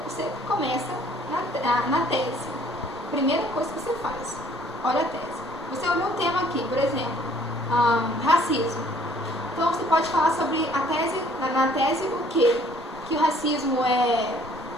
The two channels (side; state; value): both; normal; correlation 0.58